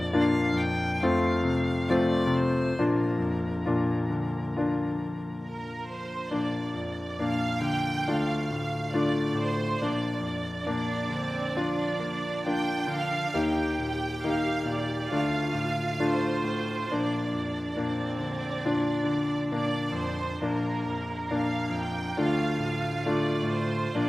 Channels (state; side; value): normal; both; correlation 0.97